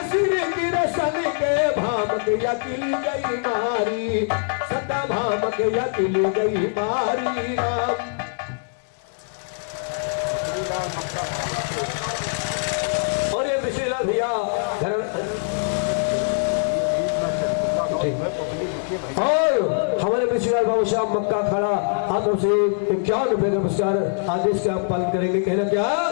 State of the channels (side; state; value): right; silent; 63 dB below the other